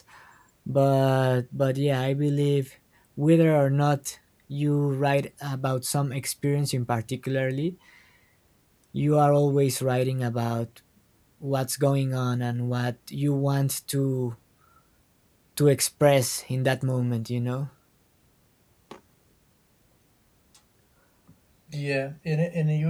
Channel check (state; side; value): identical; both; correlation 1.00